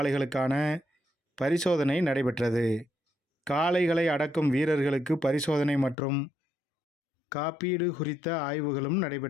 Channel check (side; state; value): right; drops out; at 6.0 s